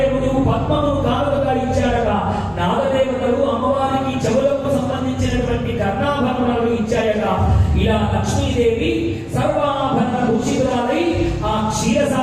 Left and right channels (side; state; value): both; identical; correlation 1.00